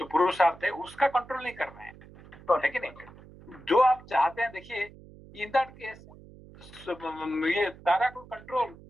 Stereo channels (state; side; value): noise; right; hum, 20 dB below the sound